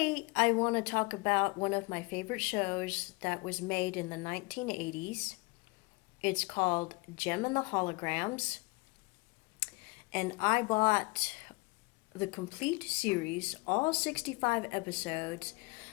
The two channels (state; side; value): quieter; right; 26.4 dB